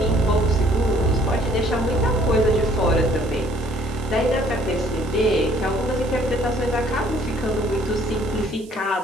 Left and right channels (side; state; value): right; noise; hiss, 24 dB below the sound